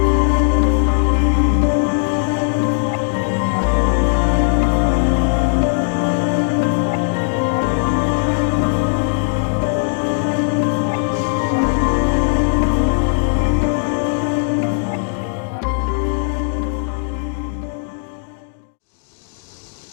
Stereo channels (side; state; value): right; silent; digital silence